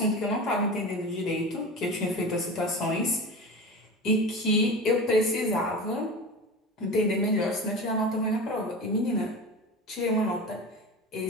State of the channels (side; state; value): both; normal; correlation 0.30